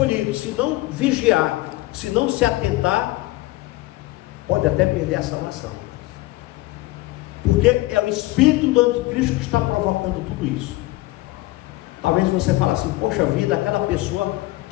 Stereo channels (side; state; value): right; quieter; 19.5 dB